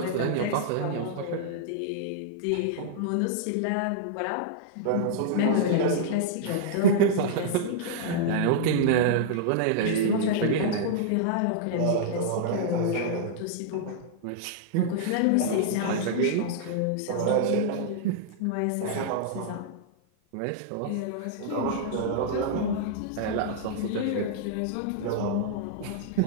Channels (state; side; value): different; both; correlation -0.02